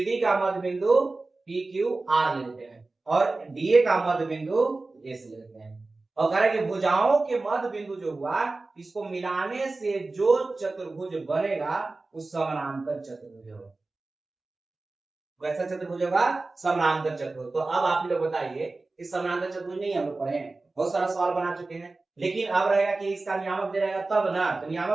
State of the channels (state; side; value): quieter; left; 3.4 dB